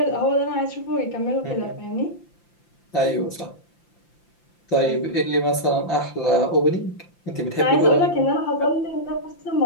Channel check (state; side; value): late; right; 5.8 ms